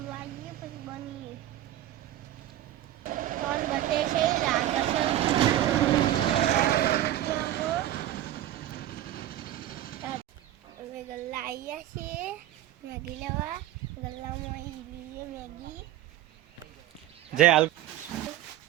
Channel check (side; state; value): left; quieter; 13.4 dB